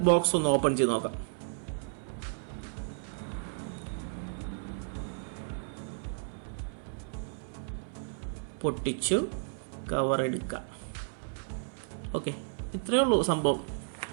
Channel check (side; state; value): left; silent; 56 dB below the other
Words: ബോക്സ് ഒന്ന് ഓപ്പൺ ചെയ്ത് നോക്കാം. പൊട്ടിച്ചു കവർ എടുക്കാം. ഓക്കെ, ഇത്രയേ ഉള്ളൂ സംഭവം.